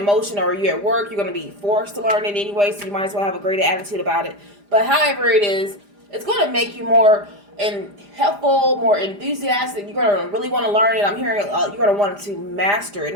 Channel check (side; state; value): left; late; 4.9 ms